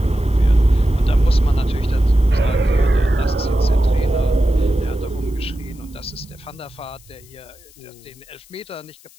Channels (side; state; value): left; noise; hiss, 26 dB below the sound